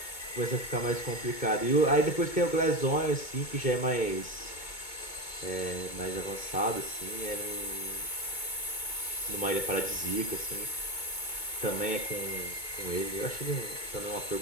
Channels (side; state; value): right; late; 2.2 ms